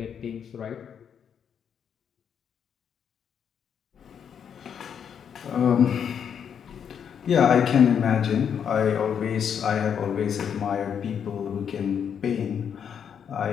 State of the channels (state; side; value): quieter; right; 7.9 dB